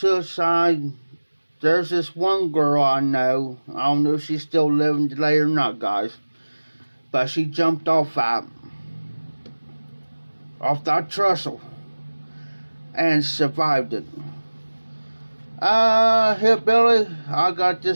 There's this one girl I know. I don't know if she's still living today or not, guys. But she jumped off that trestle. and survived it. Hillbilly, I got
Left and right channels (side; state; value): both; inverted; correlation -1.00